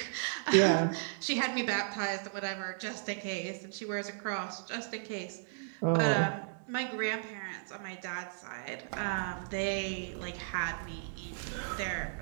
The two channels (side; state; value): left; silent; digital silence